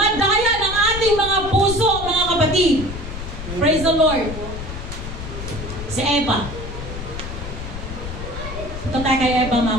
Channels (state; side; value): noise; left; rumble, 8 dB below the sound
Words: ng ating mga puso, mga kapatid. Praise the Lord. Si Eva. Ito tayo kay Eva,